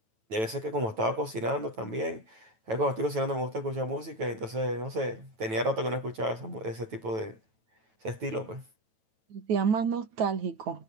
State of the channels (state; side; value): late; left; 9.1 ms